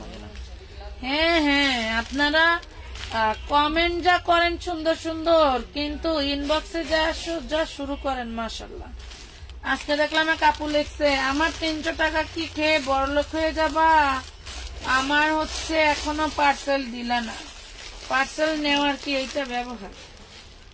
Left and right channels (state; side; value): identical; both; correlation 1.00